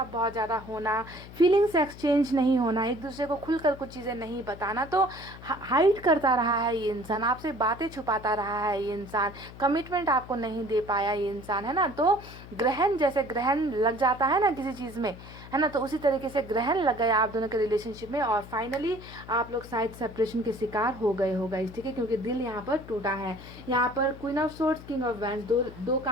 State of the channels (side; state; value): left; noise; hum, 16 dB below the sound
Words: बहुत ज़्यादा होना, फीलिंग्स एक्सचेंज नहीं होना, एक दूसरे को खुलकर कुछ चीज़ें नहीं बताना। तो हाइड करता रहा है ये इंसान, आपसे बातें छुपाता रहा है ये इंसान, कमिटमेंट आपको नहीं दे पाया ये इंसान, है ना। तो ग्रहण, जैसे ग्रहण लग जाता है ना किसी चीज़ में, है ना, तो उसी तरीके से ग्रहण लग गया आप दोनों के रिलेशनशिप में, और फाइनली आप लोग शायद सेपरेशन के शिकार हो गए हो गाइस, ठीक है, क्योंकि दिल यहाँ पर टूटा है। यहाँ पर queen of swords, king of wands, दो